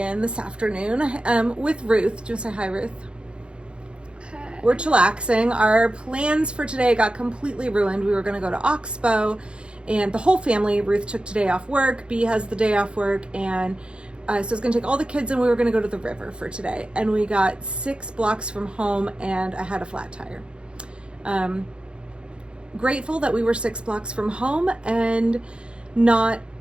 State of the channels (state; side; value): late; left; 0.055 ms